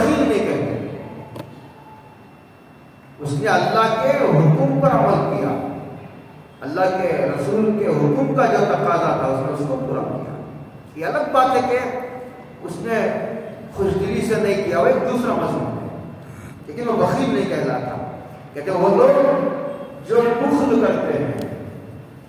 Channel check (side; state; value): both; identical; correlation 1.00